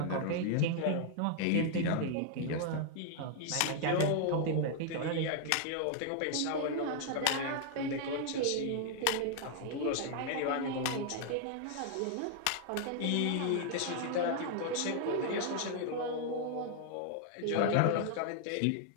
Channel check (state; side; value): different; both; correlation 0.00